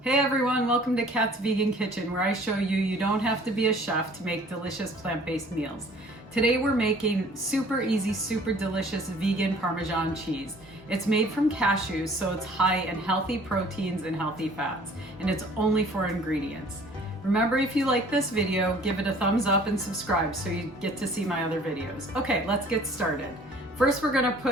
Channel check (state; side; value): normal; both; correlation 0.52